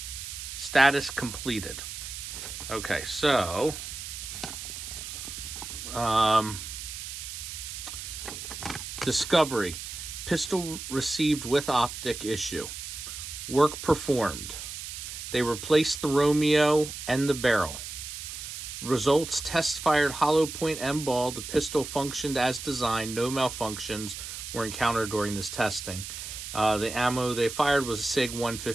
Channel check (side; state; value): right; noise; hiss, 8 dB below the sound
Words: Status completed. Okay, so discovery. Pistol received with optic issue. Work performed. They replaced the Romeo and the barrel. Results: test fired hollow point M ball. The pistol functioned as designed. No malfunctions were encountered during this testing. The ammo they fired was a SIG